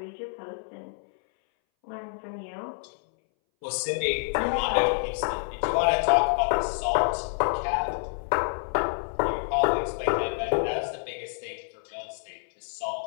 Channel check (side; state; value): right; silent; 60 dB below the other